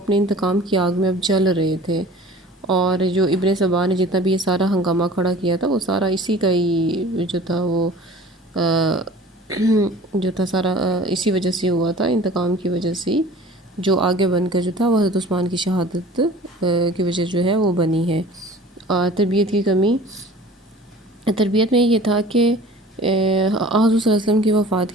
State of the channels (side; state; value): both; normal; correlation 0.45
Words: انتقام کی آگ میں اب جل رہے تھے، اور جو ابن سبا نے جتنا بھی یہ سارا ہنگامہ کھڑا کیا تھا وہ سارا اسی کا ہی جو تھا وہ جو تھا سارا اسی وجہ سے ہوا تھا، انتقام کی وجہ سے ہی، جو آگے بن کر جو تھا وہ حضرت عثمان کی شہادت کی وجہ جو ہے وہ بنی ہے۔ تربیت کی کمی، تربیت میں یہ تھا کہ حضور صلی اللہ علیہ وسلم کی وفات